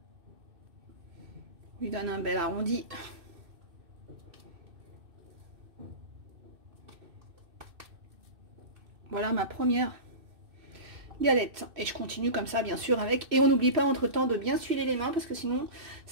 Lui donne un bel arrondi. Voilà ma première galette. Et je continue comme ça, bien sûr, avec. Et on n'oublie pas entre-temps de bien s'huiler les mains, parce que sinon,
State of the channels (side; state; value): left; late; 2.6 ms